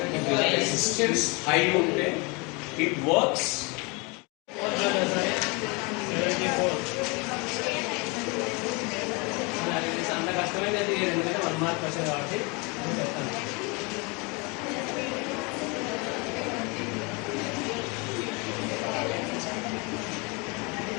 resistance high ఉంటే it works. అంత కష్టమైతే ఎందుకంటే 1 మార్క్ వచ్చేది కాబట్టి చెప్తాను.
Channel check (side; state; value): right; quieter; 29.1 dB